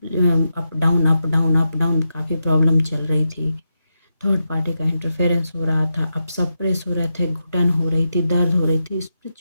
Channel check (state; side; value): inverted; both; correlation -0.86